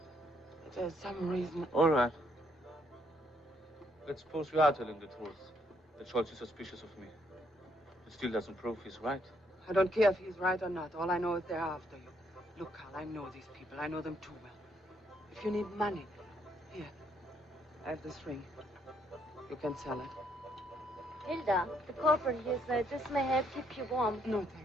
That there's some reason... All right. Let's suppose you are telling the truth. That Scholz is suspicious of me. It still doesn't prove he's right. I don't care if he's right or not. All I know is they're after you. Look, Carl, I know these people. I know them too well. If you need money, here, I have this ring. You can sell it. Hilda, the corporal here said this may help keep you warm. No,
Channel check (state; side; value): normal; both; correlation 0.71